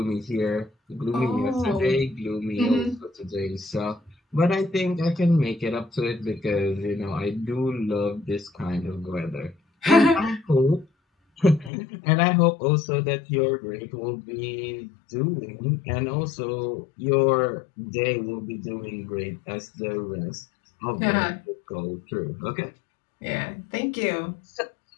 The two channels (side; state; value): right; drops out; at 11.7 s